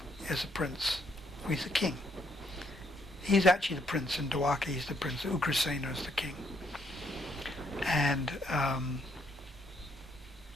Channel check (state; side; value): normal; both; correlation 0.72